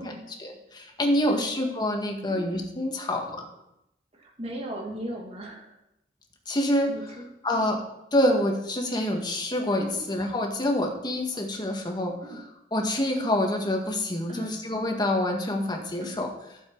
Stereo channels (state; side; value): normal; both; correlation 0.54